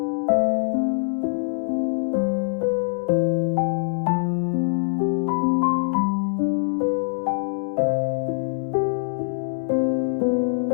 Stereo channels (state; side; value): silent; right; digital silence